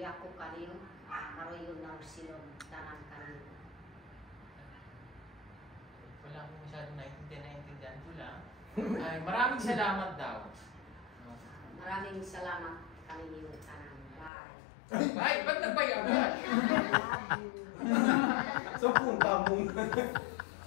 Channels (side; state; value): right; drops out; at 14.3 s